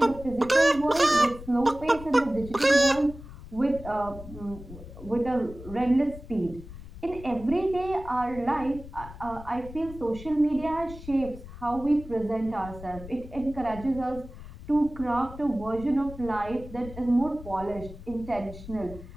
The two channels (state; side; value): noise; left; rumble, 14 dB below the sound